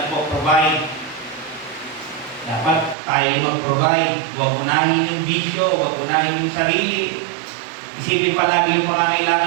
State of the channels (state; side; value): drops out; left; at 3.0 s